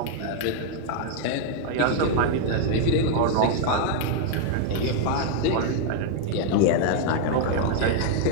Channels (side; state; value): both; different; correlation 0.00